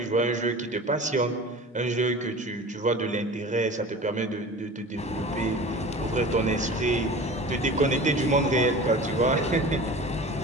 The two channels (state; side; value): normal; both; correlation 0.37